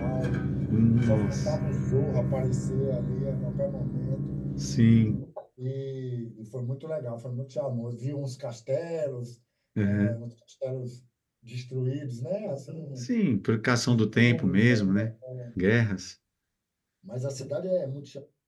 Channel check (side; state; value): both; identical; correlation 1.00